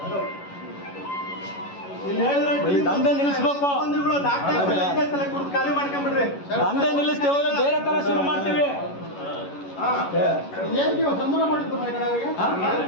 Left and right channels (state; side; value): late; right; 11 ms